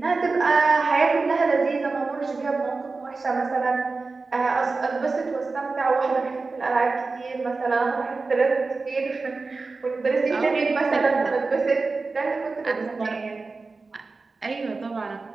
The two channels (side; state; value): left; quieter; 4.0 dB